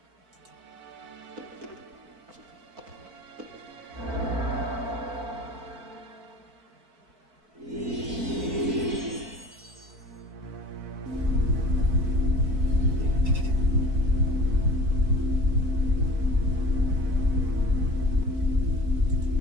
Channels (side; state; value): left; late; 4.6 ms